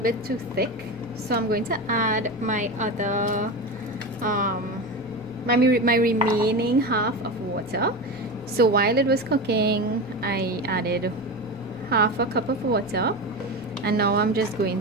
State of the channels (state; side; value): normal; both; correlation 0.23